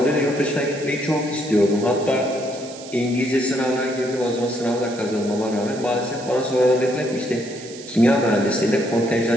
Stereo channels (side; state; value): right; noise; hiss, 16 dB below the sound